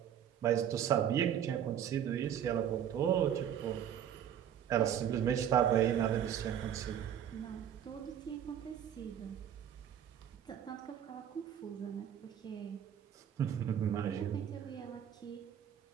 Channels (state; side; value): quieter; left; 9.6 dB